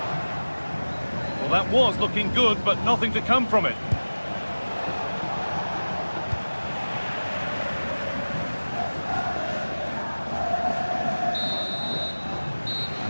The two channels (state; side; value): inverted; both; correlation -1.00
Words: Well, that was looking good, but nothing to come from it.